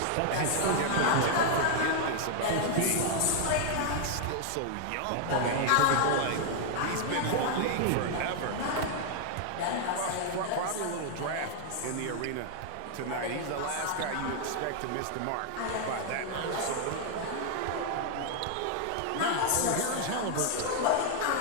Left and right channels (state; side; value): different; both; correlation 0.00